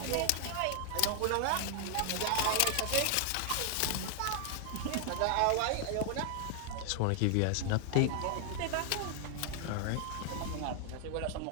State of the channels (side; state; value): both; different; correlation 0.00